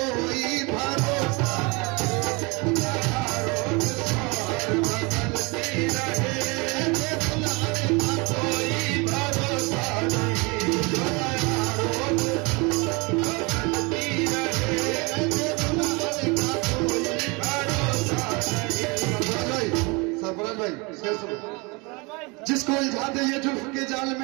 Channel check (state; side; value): quieter; left; 28.1 dB